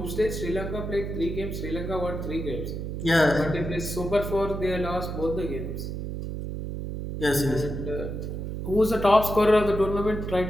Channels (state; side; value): noise; right; hum, 5 dB below the sound